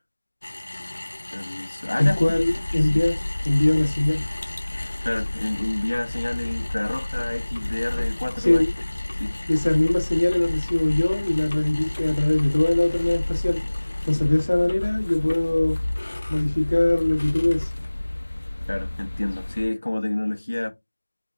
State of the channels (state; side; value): inverted; both; correlation -1.00